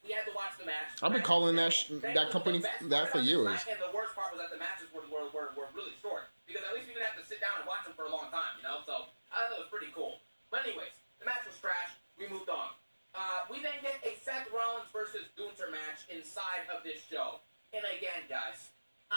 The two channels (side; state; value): both; inverted; correlation -1.00